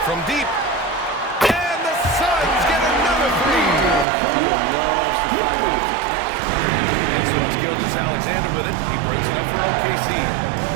from deep. And the Suns get another 3. Beal loves the fire off the catch. And so it's Gilgeous-Alexander with it. He brings it up for OKC.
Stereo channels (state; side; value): drops out; left; at 4.0 s